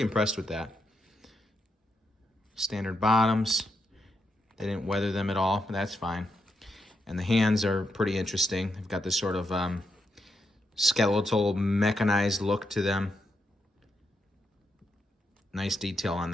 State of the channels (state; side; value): normal; both; correlation 0.82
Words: impressed with that. Standard bottoms. They didn't weather them at all, but that's fine. And the hands are pretty interesting. They've got this sort of skeletal, mechanized look to them. Nice detail on